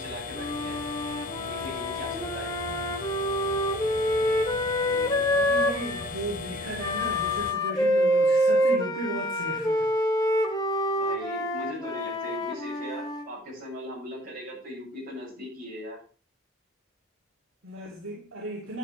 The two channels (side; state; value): both; normal; correlation 0.50